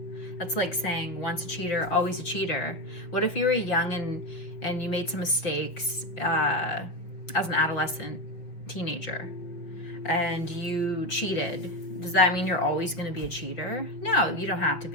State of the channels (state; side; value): late; right; 6.0 ms